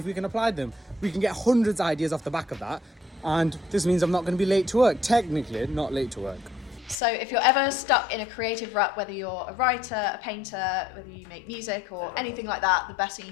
we can apply them. We can get hundreds of ideas off the back of that. And this means I'm not going to be late to work. Technically, not late to work. So if you're ever stuck in a creative rut, whether you're a writer, a painter, whether you make music or anything like that, the best thing you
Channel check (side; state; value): right; drops out; at 7.0 s